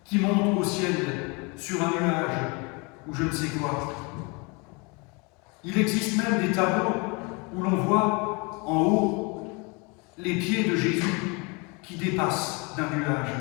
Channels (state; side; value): quieter; right; 29.9 dB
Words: qui monte au ciel sur un nuage ou je ne sais quoi. Il existe même des tableaux où l'on voit en haut les pieds de Jésus qui dépassent d'un nuage.